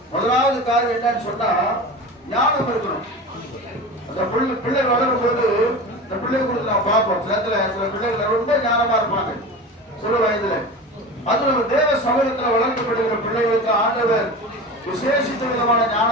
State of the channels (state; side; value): normal; both; correlation 0.32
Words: முதலாவது காரியம் என்னன்னு சொன்னா ஞானம் இருக்கணும். அந்த பிள்ளை வளரும் போது இந்த பிள்ளை குறித்து நான் பார்ப்போம். சில பிள்ளைகள் ரொம்ப ஞானமா இருப்பாங்க சிறு வயதுல. அது நம்ம தேவ சமூகத்துல வளர்க்கப்படுகிற பிள்ளைகளுக்கு ஆண்டவர் விசேஷித்த விதமான